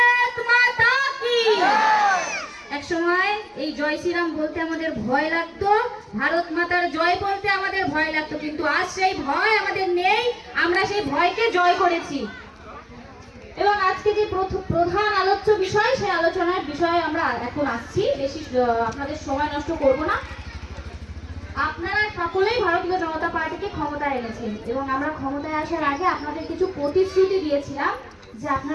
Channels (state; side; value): identical; both; correlation 1.00